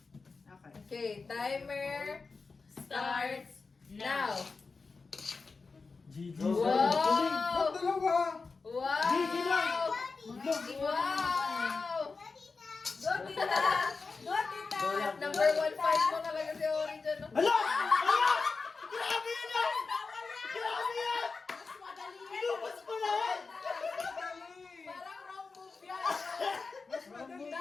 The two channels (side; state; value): right; quieter; 4.3 dB